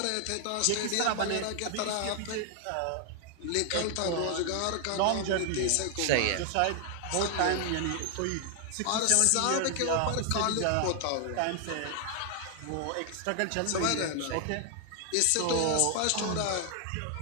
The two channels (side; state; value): both; different; correlation 0.00